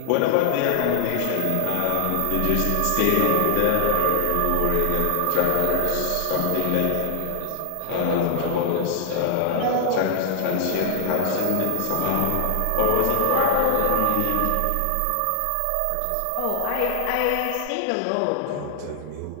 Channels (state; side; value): different; both; correlation 0.00